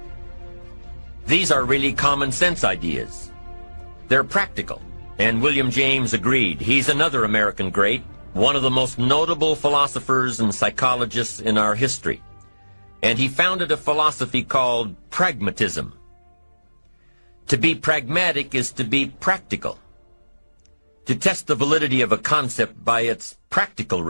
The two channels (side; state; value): both; inverted; correlation -1.00